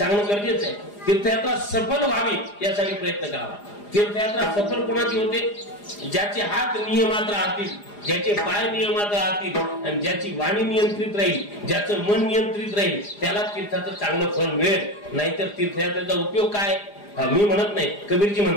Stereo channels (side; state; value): right; late; 4.9 ms